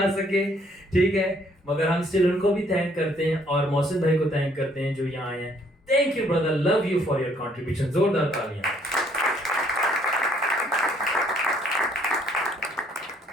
सके, ठीक है, मगर हम स्टिल उनको भी थैंक करते हैं और मोहसिन भाई को थैंक करते हैं जो यहाँ आए हैं. Thank you brother, love you for your contribution. जोरदार तालियां.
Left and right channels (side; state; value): both; normal; correlation 0.65